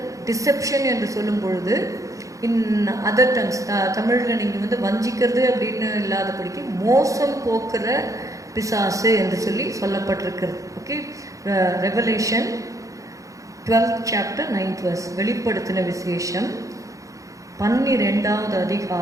டிசெப்ஷன் என்று சொல்லும் பொழுது இன் அதர் டங்ஸ், தமிழில் நீங்கள் வஞ்சிக்கிறது அப்படின்னு இல்லாதபடிக்கு மோசம் போக்குற பிசாசு என்று சொல்லி சொல்லப்பட்டிருக்கிறது. Okay, revelation 12th chapter 9th verse, வெளிப்படுத்தின விசேஷம் 12வது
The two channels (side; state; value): left; late; 0.16 ms